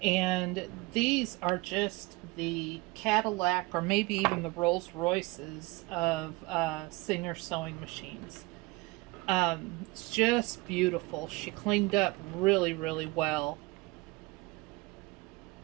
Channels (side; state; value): left; quieter; 23.4 dB